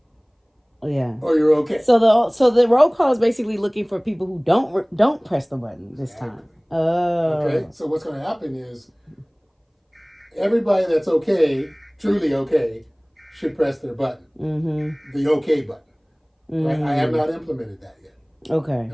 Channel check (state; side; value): identical; both; correlation 1.00